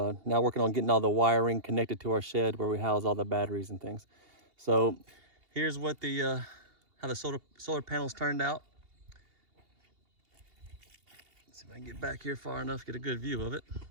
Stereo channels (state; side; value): late; left; 2.8 ms